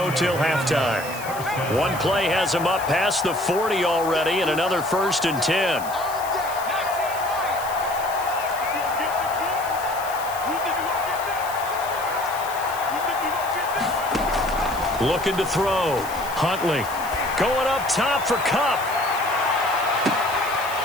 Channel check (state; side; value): noise; left; hiss, 14 dB below the sound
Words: till halftime. One play has him up past the 40 already, and another 1st and 10. Looking to throw. Huntley going up top for Kupp.